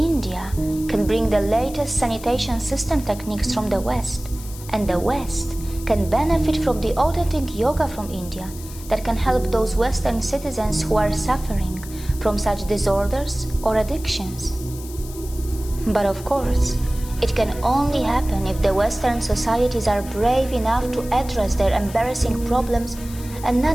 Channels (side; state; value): left; noise; hiss, 16 dB below the sound